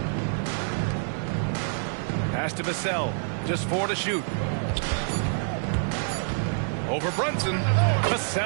Pass to Vassell. Just 4 to shoot. Over Brunson.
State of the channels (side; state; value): left; silent; 57 dB below the other